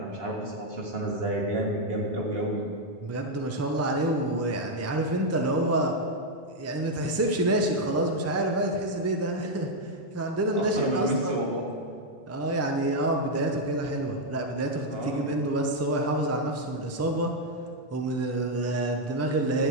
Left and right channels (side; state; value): both; normal; correlation -0.01